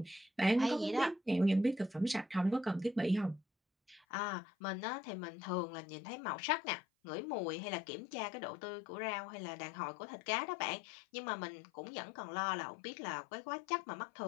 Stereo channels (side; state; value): right; drops out; at 4.0 s